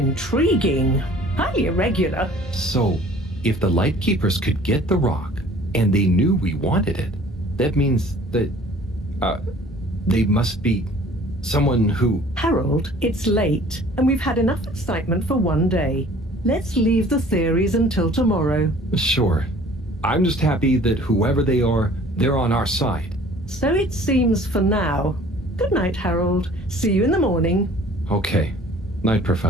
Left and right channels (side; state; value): both; normal; correlation 0.51